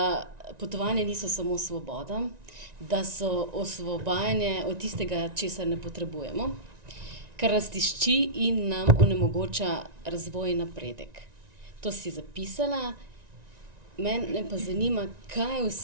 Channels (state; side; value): late; left; 1.9 ms